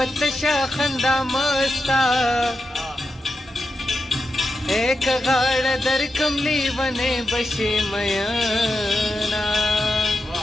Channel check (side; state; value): both; normal; correlation 0.88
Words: تشه خندا مستا ایک غاړه درکم لیونې بشي میانا